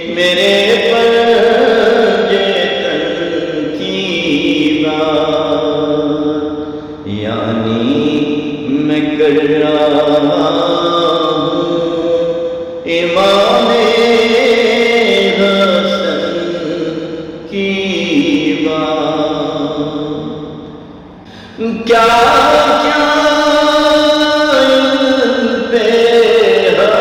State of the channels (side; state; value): both; identical; correlation 1.00